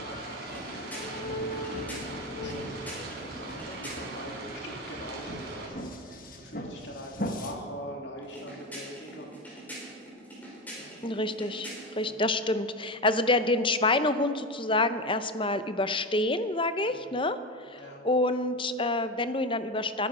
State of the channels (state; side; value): normal; both; correlation 0.20